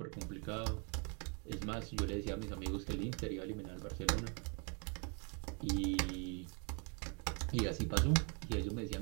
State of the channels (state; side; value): quieter; left; 35.9 dB